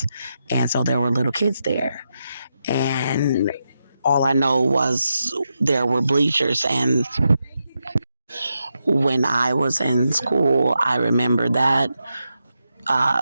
and so there were little kids there, and all I know was there were bleachers. And when I was in school, I remember that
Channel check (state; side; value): inverted; both; correlation -0.86